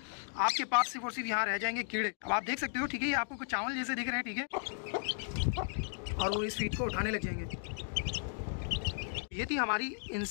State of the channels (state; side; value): silent; right; digital silence